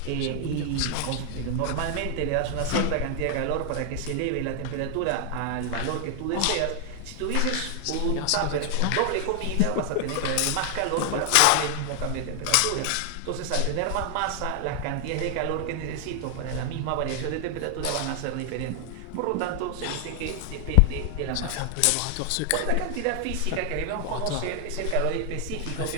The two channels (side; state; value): both; different; correlation 0.00